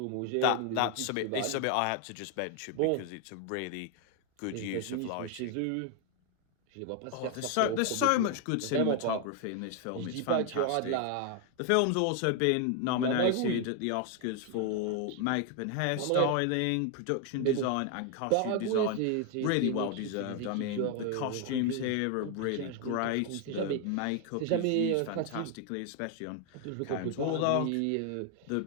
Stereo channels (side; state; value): both; different; correlation 0.01